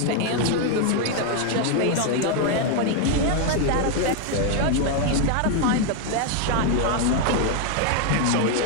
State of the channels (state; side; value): different; both; correlation 0.00